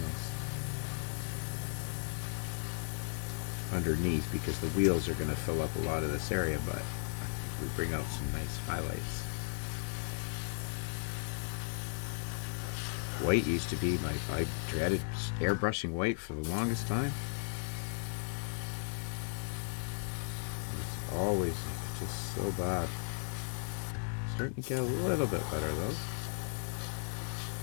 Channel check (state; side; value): silent; right; digital silence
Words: underneath because the wheels are going to fill up a lot of this area, but we bring out some nice highlights. White used to be I dreaded airbrushing white for the longest time. It's always just so bad. Starting to get a little bit better though.